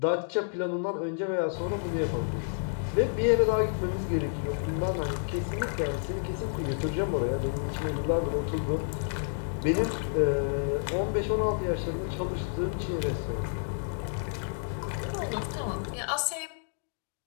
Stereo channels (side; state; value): right; silent; digital silence